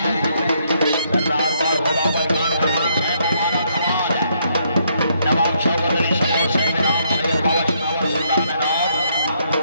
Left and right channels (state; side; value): inverted; both; correlation -0.72